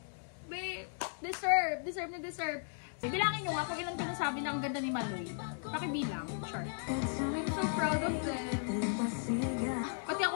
Babe, deserve na deserve. Bilangin nyo nga kung ilan ko nasabi na ang ganda ni Maloy. Pakibilang, sure. I'm so proud of them. Pati ako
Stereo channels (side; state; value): right; silent; digital silence